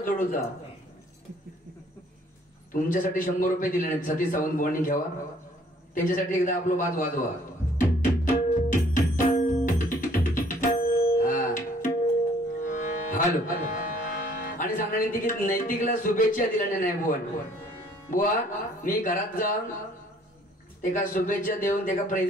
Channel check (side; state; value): both; normal; correlation 0.60